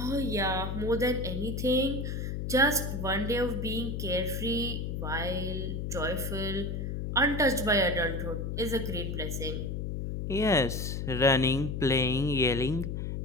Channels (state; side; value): noise; left; hum, 3 dB below the sound